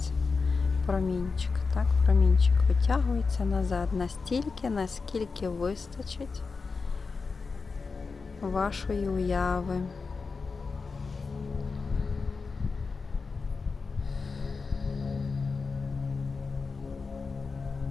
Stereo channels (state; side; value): quieter; right; 4.6 dB